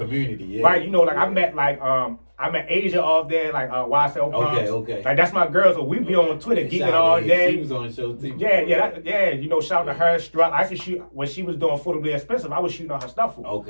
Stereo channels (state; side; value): inverted; both; correlation -1.00